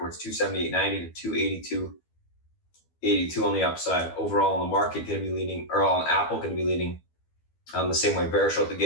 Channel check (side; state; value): right; late; 12 ms